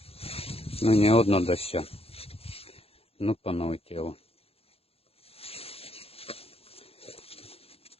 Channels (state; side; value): late; right; 0.28 ms